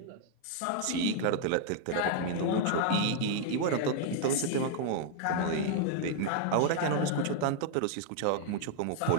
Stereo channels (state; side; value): different; both; correlation 0.00